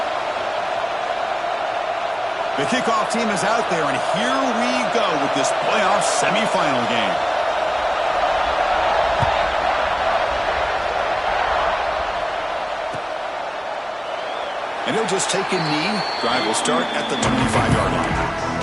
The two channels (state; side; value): identical; both; correlation 1.00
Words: The kickoff team is out there, and here we go with this playoff semifinal game. And he'll just take a knee. Drive will start at the 25-yard line.